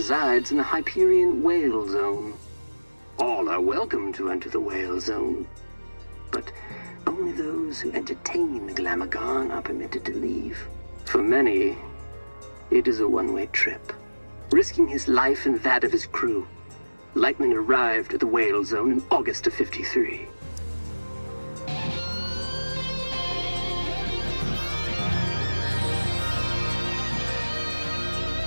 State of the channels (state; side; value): inverted; both; correlation -1.00